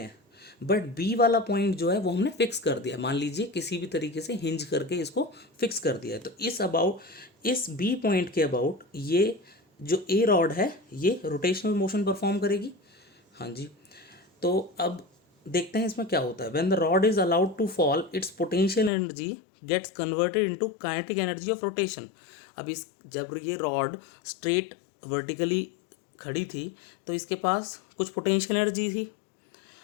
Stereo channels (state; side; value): drops out; right; at 18.9 s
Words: हैं, बट बी वाला पॉइंट जो है वो हमने फिक्स कर दिया। मान लीजिए किसी भी तरीके से हिंज करके इसको फिक्स कर दिया है। तो इस बी पॉइंट के अबाउट ये जो ए रॉड है ये रोटेशनल मोशन परफॉर्म करेगी। हाँ जी, तो अब देखते हैं इसमें क्या होता है। When the rod is allowed to fall its potential energy gets converted into kinetic energy of rotation. अब इस जब ये रॉड स्ट्रेट वर्टिकली खड़ी थी तो इसके पास कुछ पोटेंशियल एनर्जी थी।